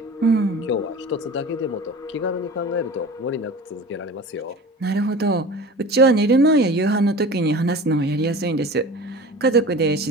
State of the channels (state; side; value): normal; both; correlation 0.37